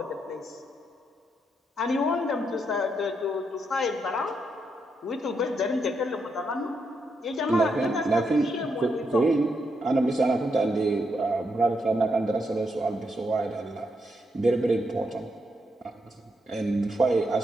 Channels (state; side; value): normal; both; correlation 0.80